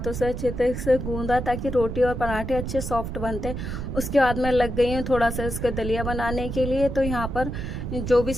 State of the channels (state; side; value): noise; right; rumble, 5 dB below the sound